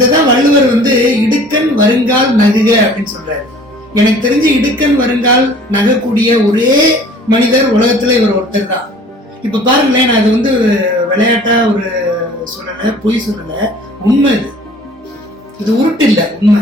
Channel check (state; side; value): normal; both; correlation 0.49